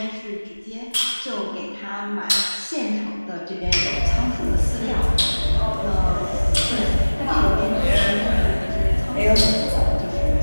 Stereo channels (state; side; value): inverted; both; correlation -1.00